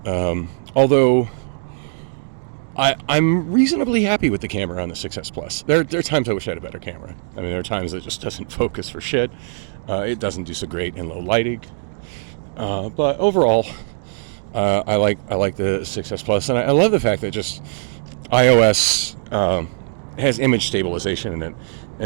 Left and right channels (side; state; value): left; silent; digital silence